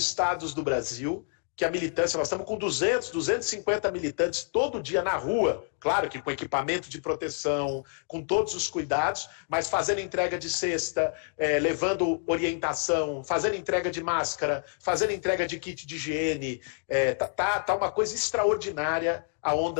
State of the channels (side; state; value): right; silent; 59 dB below the other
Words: do Brasil, que a militância, nós estamos com 250 militantes todo dia na rua, claro que com equipamento de proteção, com todos os cuidados, mas fazendo entrega de cesta, levando orientação, fazendo entrega de máscara, fazendo entrega de kit de higiene. Tá uma coisa extraordinária a